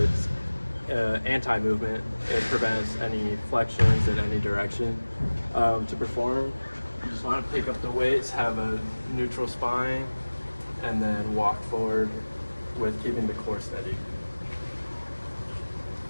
anti-movement. It prevents any flexions in any direction. To perform, you just want to pick up the weights, have a neutral spine, and then walk forward with keeping the core steady.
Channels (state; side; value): inverted; both; correlation -1.00